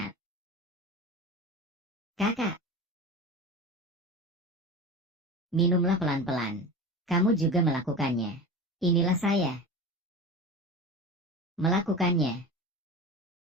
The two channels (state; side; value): normal; both; correlation 0.30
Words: Kakak. Minumlah pelan-pelan. Kamu juga melakukannya. Inilah saya. Melakukannya.